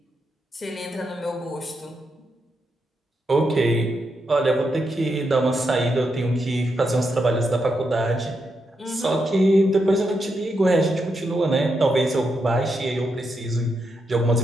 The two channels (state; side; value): normal; both; correlation 0.83